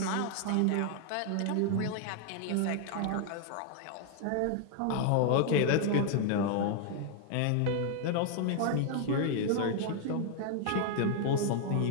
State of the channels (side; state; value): both; different; correlation 0.00